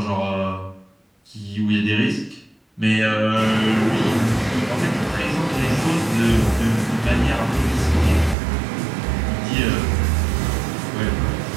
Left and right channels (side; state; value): left; drops out; at 8.3 s